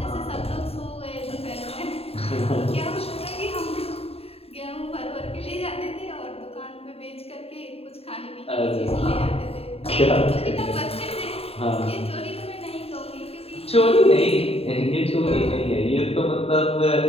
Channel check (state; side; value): late; right; 0.29 ms